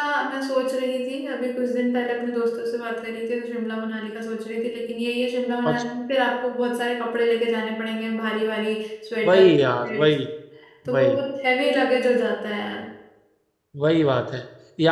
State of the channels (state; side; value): identical; both; correlation 1.00